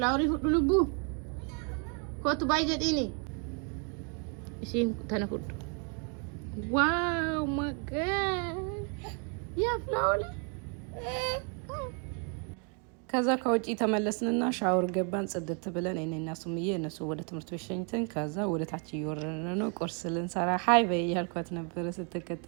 ፍሉቡ ኮቱ ባይጀዲኒ እሺን ተነፉድ ዋው ማገ ያ ፍላወሪ ከዛ ከውጪ ተመለስንና ሻወር ገባን ጽድት ብለን እኔና ሱምዬ እነሱ ወደ ትምህርት ቤት ሸኝተን ከዛ ወደ ታች እየወረድን ነው ቁርስ ልንሰራ ሃይ በይ ያልኳት ነበር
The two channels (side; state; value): left; quieter; 38.2 dB